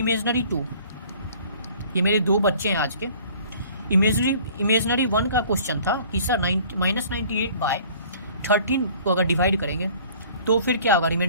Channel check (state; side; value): inverted; both; correlation -0.51